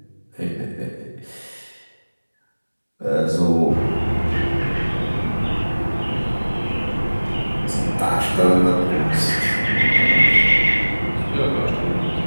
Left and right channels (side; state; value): both; inverted; correlation -1.00